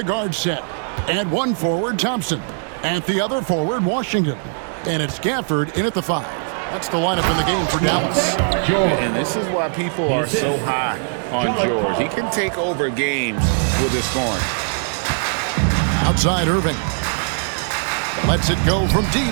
guard set. At one forward, Thompson. At the other forward, Washington. And it's Gafford in at the 5. That's the lineup in the game for Dallas. And this is why people are so high on George. He can take over games with his scoring. Outside Irving. Lets it go from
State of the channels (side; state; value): left; silent; 66 dB below the other